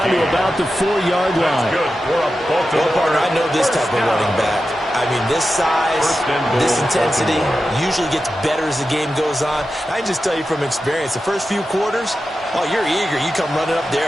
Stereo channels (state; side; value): normal; both; correlation 0.91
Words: to about the 4-yard line. Well, partner, I know this type of running back. I mean, this size, this intensity usually gets better as the game goes on. I can just tell you from experience, the first few quarters, oh, you're eager. You come running up